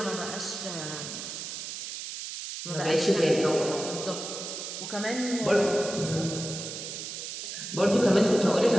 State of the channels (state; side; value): noise; right; hiss, 7 dB below the sound